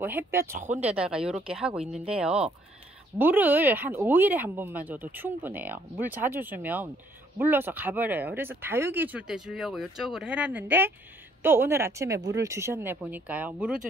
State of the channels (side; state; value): both; normal; correlation 0.66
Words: 햇볕 좋은 데다가 이렇게 하고 있는데요, 물을 한 5일에 한 번만 줘도 충분해요. 물 자주 주면 물러서 가버려요. 그래서 다육이 줄 때 주려고 이쪽으로 해놨는데 또 오늘 아침에 물을 주셨네. 보니까요. 물을